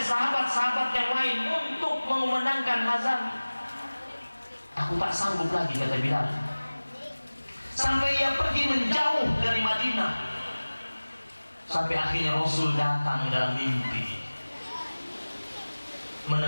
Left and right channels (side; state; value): both; inverted; correlation -1.00